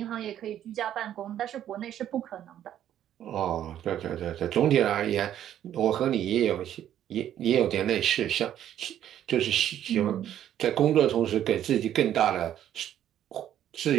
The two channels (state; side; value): quieter; left; 11.0 dB